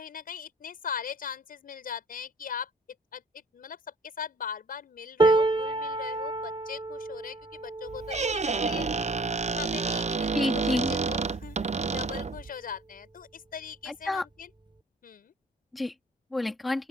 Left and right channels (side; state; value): both; normal; correlation 0.53